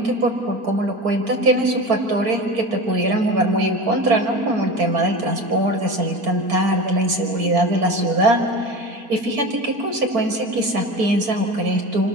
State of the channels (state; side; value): late; left; 4.5 ms